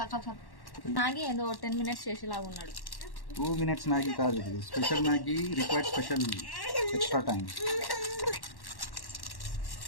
మ్యాగీ ఏదో 10 minutes చేసేలాగా ఉన్నాడు. 2 minutes మ్యాగీ కాదు, ఇది special Maggi, required special extra time.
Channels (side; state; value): right; late; 1.1 ms